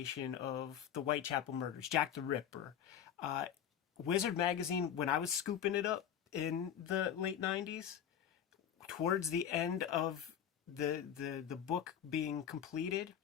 of the Whitechapel murders, Jack the Ripper. Wizard Magazine, when I was scooping it up in the late 90s, towards the end of the book being completed,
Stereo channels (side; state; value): right; quieter; 9.3 dB